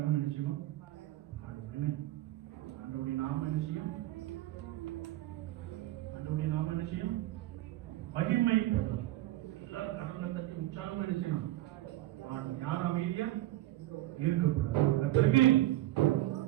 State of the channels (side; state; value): left; quieter; 15.9 dB